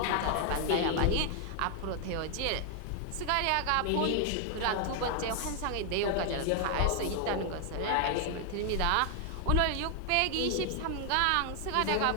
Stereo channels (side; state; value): both; different; correlation 0.00